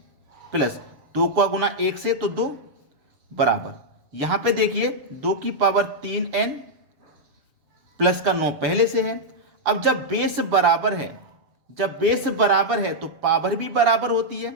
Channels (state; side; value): late; left; 7.0 ms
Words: प्लस 2 का गुना 1 से तो 2 बराबर। यहां पे देखिए 2 की पावर 3n प्लस का 9 पहले से है। अब जब बेस बराबर है, जब बेस बराबर है तो पावर भी बराबर होती है।